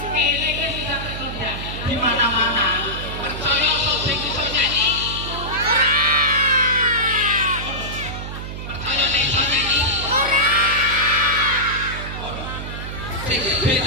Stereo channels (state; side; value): noise; right; hum, 8 dB below the sound